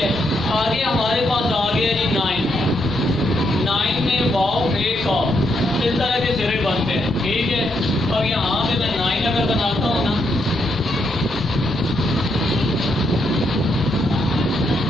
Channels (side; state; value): both; normal; correlation 0.78